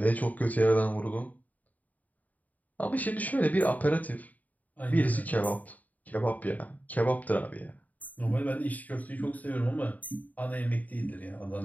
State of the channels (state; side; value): late; right; 0.076 ms